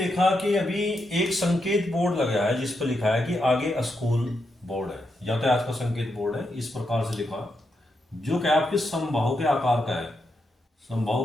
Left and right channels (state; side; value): normal; both; correlation 0.83